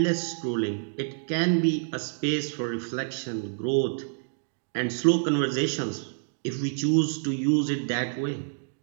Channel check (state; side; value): silent; left; digital silence